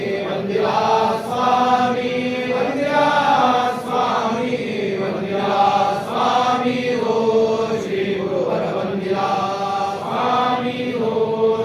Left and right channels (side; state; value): both; identical; correlation 1.00